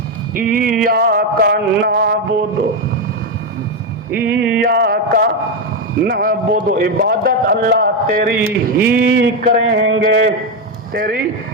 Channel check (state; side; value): normal; both; correlation 0.07